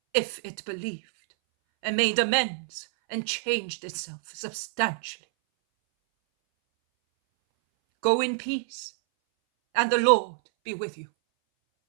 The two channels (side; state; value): left; silent; 59 dB below the other